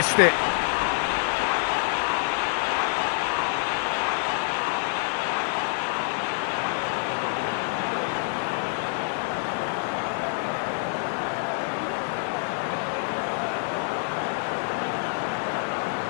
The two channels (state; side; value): silent; right; 59 dB below the other